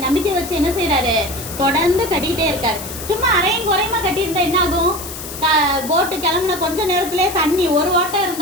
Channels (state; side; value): noise; left; hiss, 10 dB below the sound